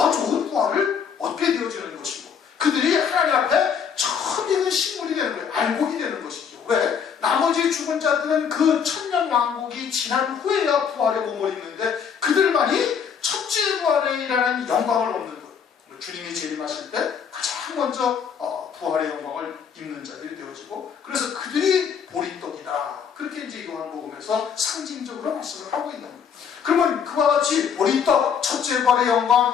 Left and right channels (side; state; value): right; quieter; 7.2 dB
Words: 좋은 부활을 얻게 되어지는 것이고 그들이 하나님 앞에 처음 익은 식물이 되는 거예요. 알곡이 되는 것이죠. 왜? 나머지 죽은 자들은 그 천년 왕국이 지난 후에야 부활의 몸을 입는데 그들만이 첫째 부활이라는 영광을 얻는 거예요. 주님이 재림하실 때 가장 먼저 부활의 영광을 입는 자들이 되어지고 그래서 그들이 보리떡이다. 그렇게 이제 요한복음에서 상징적으로 말씀을 하고 있는 거예요. 그러면 그와 같이 보리떡, 첫째 부활의